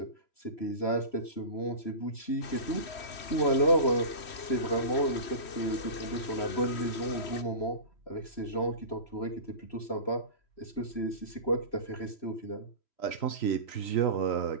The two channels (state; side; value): late; right; 3.1 ms